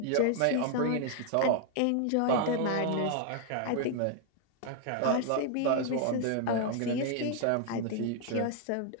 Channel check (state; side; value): different; both; correlation 0.00